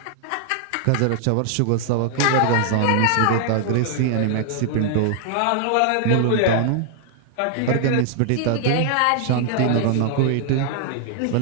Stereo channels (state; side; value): different; both; correlation 0.00